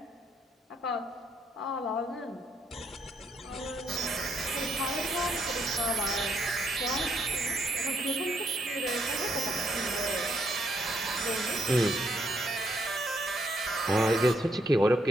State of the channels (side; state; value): both; normal; correlation 0.74